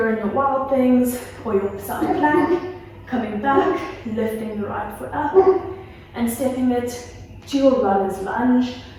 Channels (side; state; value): both; identical; correlation 1.00